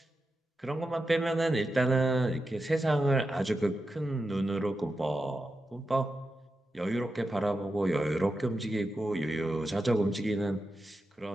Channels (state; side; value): normal; both; correlation 0.89